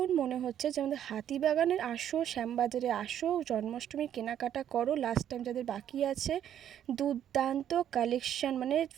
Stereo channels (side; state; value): left; quieter; 10.2 dB